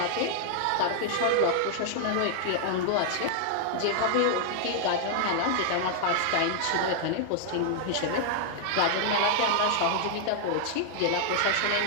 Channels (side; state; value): both; different; correlation -0.01